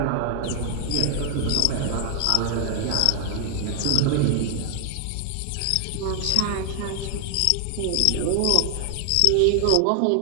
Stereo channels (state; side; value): different; both; correlation 0.00